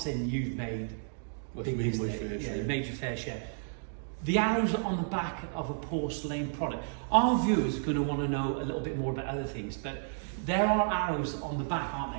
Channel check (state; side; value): silent; left; digital silence